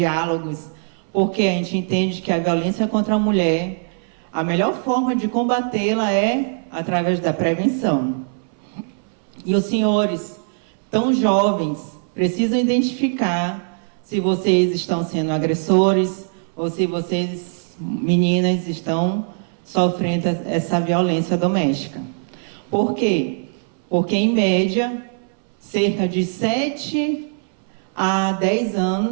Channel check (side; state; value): left; silent; 62 dB below the other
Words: porque a gente entende que a violência contra a mulher, a melhor forma de combatê-la é através da prevenção. E os senhores, tão jovens, precisam identificar se vocês estão sendo agressores ou se vocês, meninas, estão sofrendo essa violência doméstica. Por quê? Porque, em média, cerca de 7 a 10